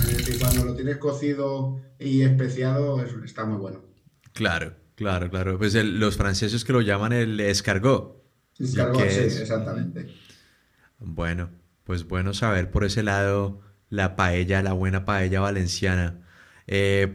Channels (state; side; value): identical; both; correlation 1.00